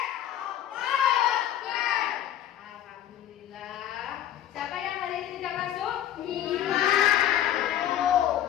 Allahu Akbar. Alhamdulillah. Siapa yang hari ini tidak masuk?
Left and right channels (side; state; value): right; quieter; 11.5 dB